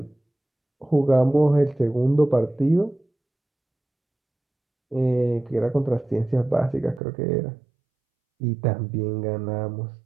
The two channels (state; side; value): drops out; left; at 7.0 s